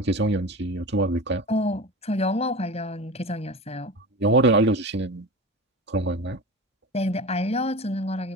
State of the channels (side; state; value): both; normal; correlation 0.29